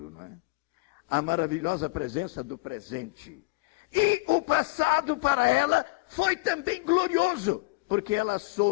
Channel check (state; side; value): quieter; right; 23.6 dB